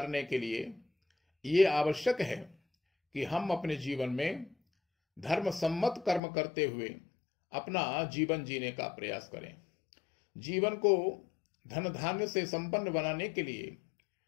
के लिए ये आवश्यक है कि हम अपने जीवन में धर्म सम्मत कर्म करते हुए अपना जीवन जीने का प्रयास करें। जीवन को धन धान्य से संपन्न बनाने के लिए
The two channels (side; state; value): right; drops out; at 6.2 s